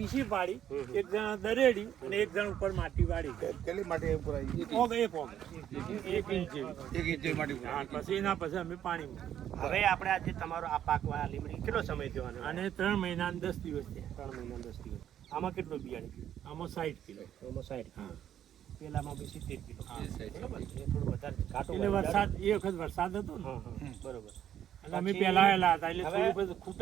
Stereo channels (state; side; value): quieter; left; 10.4 dB